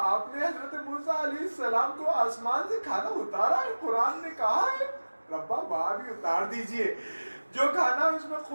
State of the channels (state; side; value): inverted; both; correlation -1.00